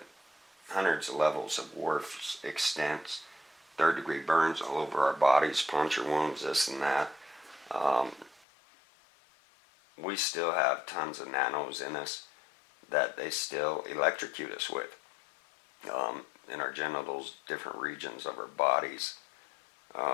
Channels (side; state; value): right; drops out; at 8.5 s